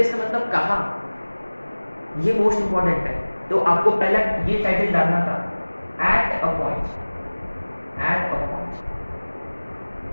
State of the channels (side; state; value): both; inverted; correlation -1.00